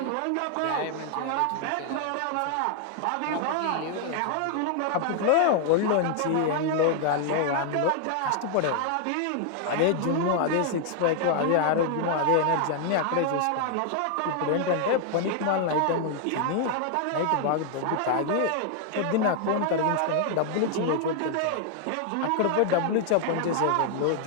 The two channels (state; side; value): different; both; correlation 0.00